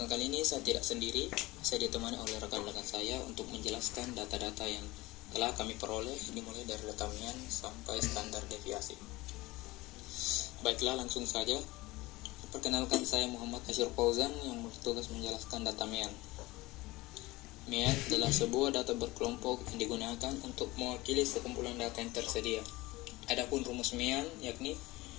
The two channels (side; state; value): right; quieter; 20.4 dB